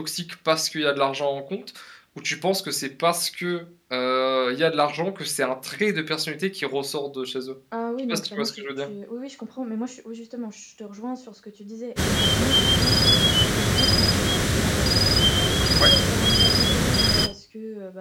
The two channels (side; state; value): both; identical; correlation 1.00